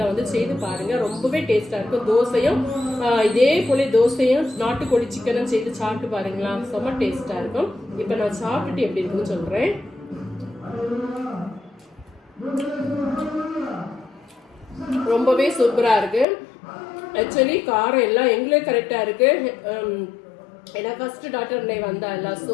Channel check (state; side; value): drops out; right; at 16.2 s